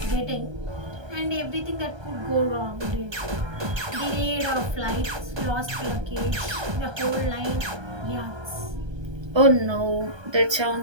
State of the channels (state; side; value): late; left; 1.3 ms